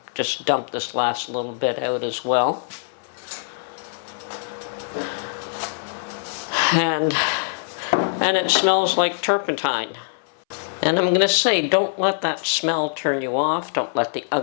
just dump this last little bit out as well. And it smells like turpentine. And I'm going to say, don't let that smell turn you off. Don't let the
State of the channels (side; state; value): right; silent; 62 dB below the other